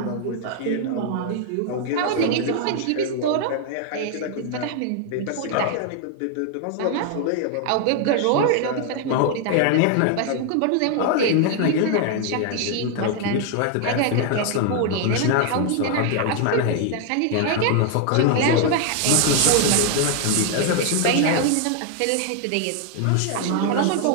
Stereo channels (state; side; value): different; both; correlation 0.00